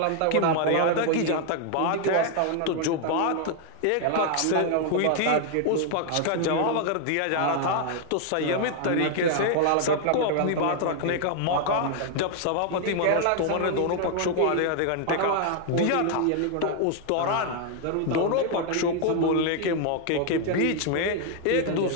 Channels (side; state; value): both; different; correlation 0.00